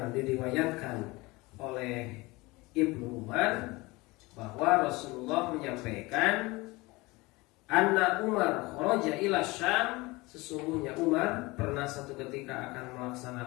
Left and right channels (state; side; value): quieter; right; 22.8 dB